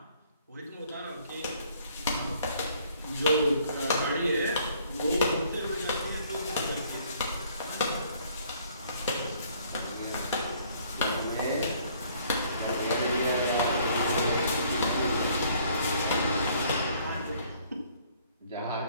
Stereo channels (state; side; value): inverted; both; correlation -0.61